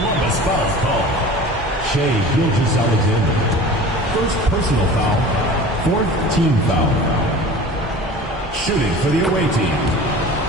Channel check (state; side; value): normal; both; correlation 0.39